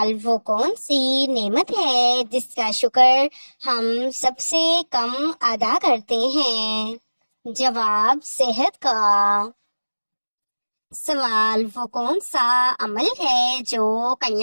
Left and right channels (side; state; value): both; inverted; correlation -1.00